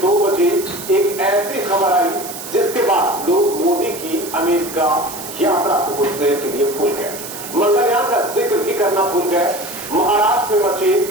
2 बजे एक ऐसी खबर आई जिसके बाद लोग मोदी की अमेरिका यात्रा को कुछ देर के लिए भूल गए, मंगलयान का जिक्र भी करना भूल गए, महाराष्ट्र में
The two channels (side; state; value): right; noise; hiss, 11 dB below the sound